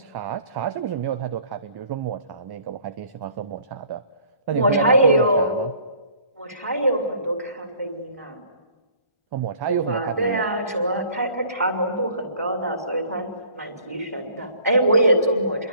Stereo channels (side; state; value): both; inverted; correlation -0.54